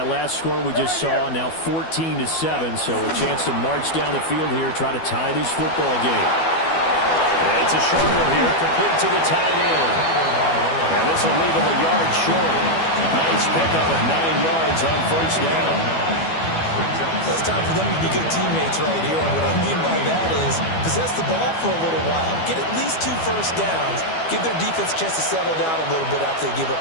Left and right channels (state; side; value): late; right; 12 ms